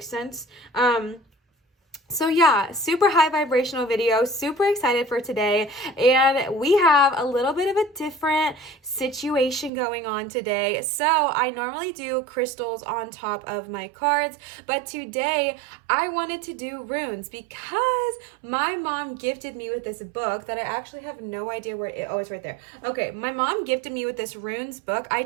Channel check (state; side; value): drops out; left; at 9.7 s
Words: sense. So yeah, super high vibrational video, super excited for today, and we have a little bit of a different situation going on today. So I normally do crystals on top of my cards, but today I wanted to do runes because my mom gifted me with this book that I actually have no idea where it's right there. Okay, my mom gifted me with this runes book. I